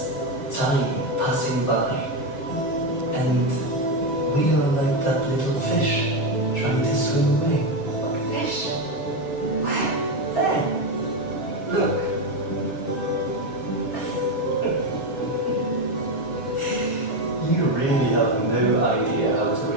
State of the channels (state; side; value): late; right; 7.2 ms